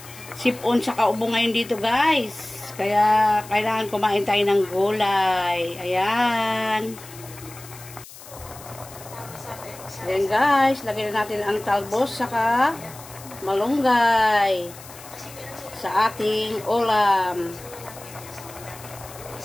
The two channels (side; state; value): left; noise; hiss, 17 dB below the sound